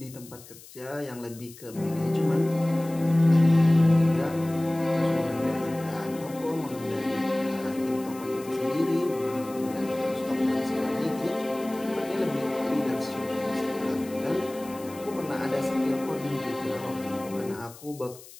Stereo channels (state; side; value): noise; left; hiss, 19 dB below the sound